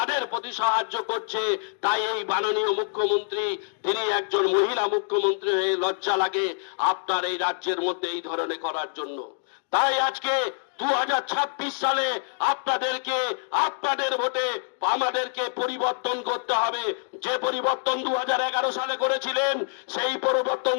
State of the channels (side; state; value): right; silent; digital silence